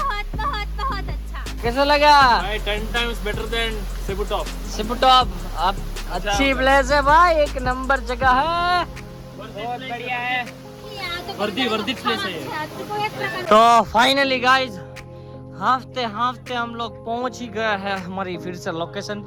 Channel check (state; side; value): identical; both; correlation 1.00